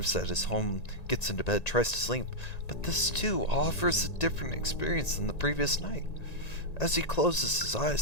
at his home, gets into bed, tries to sleep, but this too offers a different experience than the previous night. As he closes his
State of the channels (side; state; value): right; late; 1.9 ms